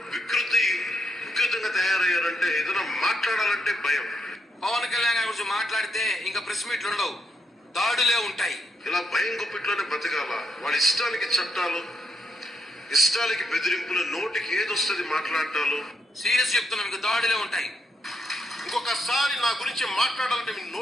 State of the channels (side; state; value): both; normal; correlation 0.79